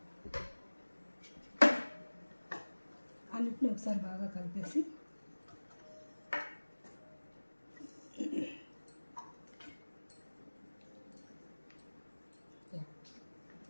అన్నిటిని ఒకసారి బాగా కలిపేసి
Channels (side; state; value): both; inverted; correlation -1.00